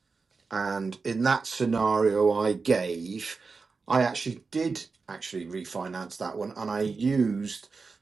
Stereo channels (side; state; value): left; quieter; 4.5 dB